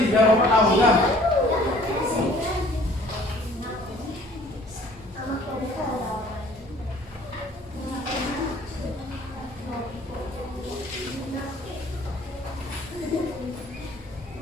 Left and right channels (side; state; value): both; normal; correlation 0.54